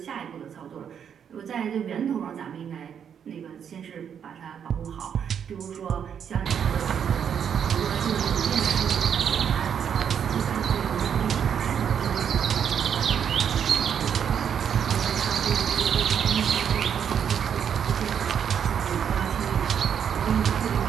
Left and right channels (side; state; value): left; quieter; 8.1 dB